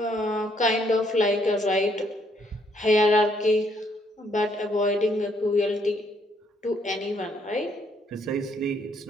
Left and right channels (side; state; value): both; normal; correlation 0.70